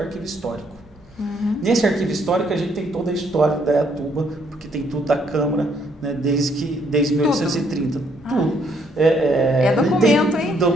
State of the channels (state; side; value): normal; both; correlation 0.69